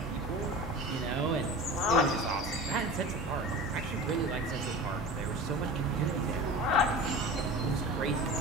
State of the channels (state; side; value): normal; both; correlation 0.34